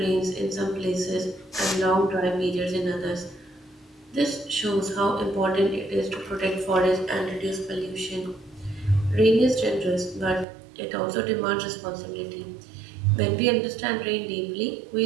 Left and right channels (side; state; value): left; drops out; at 10.5 s